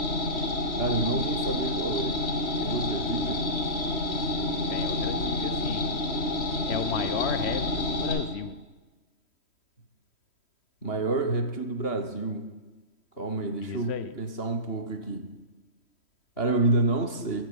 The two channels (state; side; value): late; right; 3.1 ms